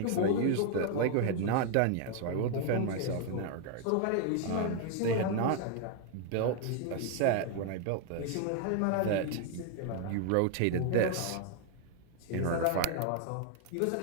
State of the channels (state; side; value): different; both; correlation 0.00